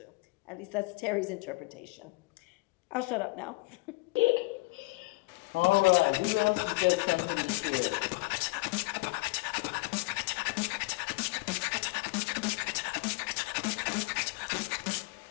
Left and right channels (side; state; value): right; quieter; 25.1 dB